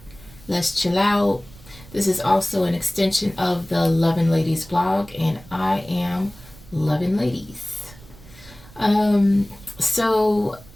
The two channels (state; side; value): noise; right; rumble, 21 dB below the sound